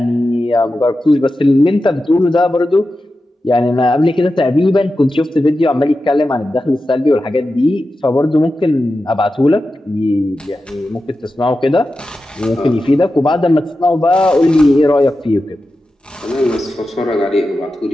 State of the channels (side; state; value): both; normal; correlation 0.92